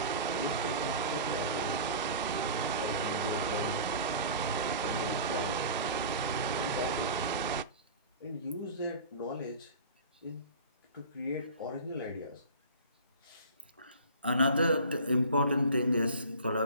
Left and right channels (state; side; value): inverted; both; correlation -0.39